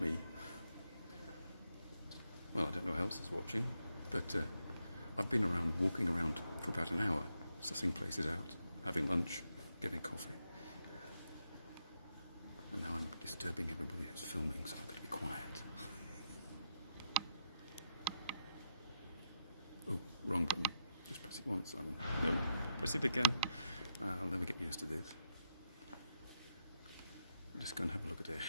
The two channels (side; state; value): both; inverted; correlation -0.81